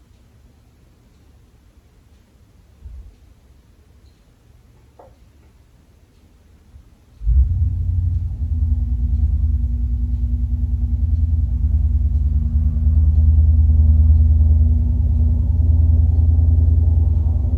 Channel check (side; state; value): both; identical; correlation 1.00